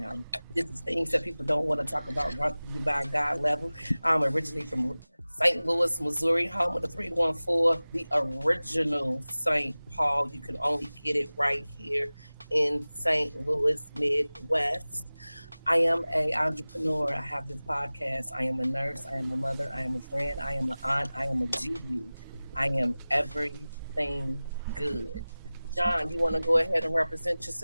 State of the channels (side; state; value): both; inverted; correlation -0.98